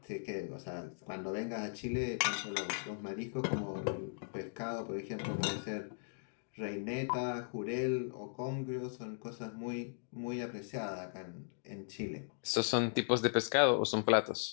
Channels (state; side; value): silent; right; digital silence